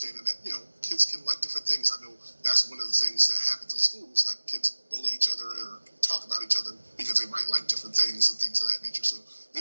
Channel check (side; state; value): both; inverted; correlation -1.00